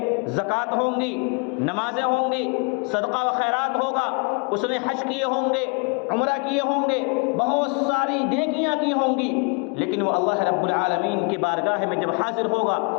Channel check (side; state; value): right; quieter; 34.4 dB